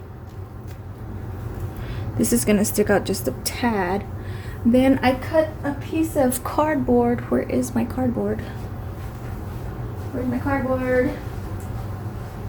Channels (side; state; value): both; identical; correlation 1.00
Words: this is gonna stick out just a tad. Then I cut a piece of cardboard. Where is my cardboard? Where's my cardboard?